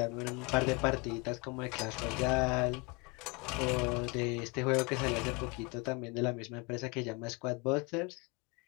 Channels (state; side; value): quieter; right; 28.0 dB